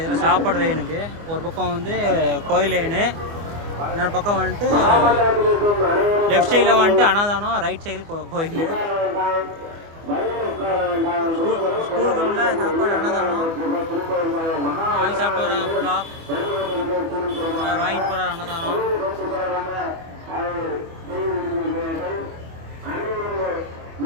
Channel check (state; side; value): late; left; 24 ms